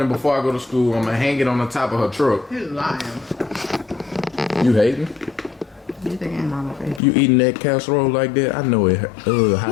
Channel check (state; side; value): drops out; right; at 7.0 s